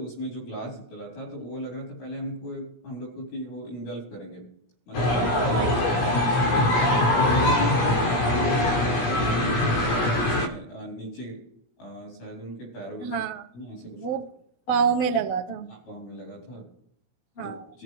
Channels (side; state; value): right; late; 17 ms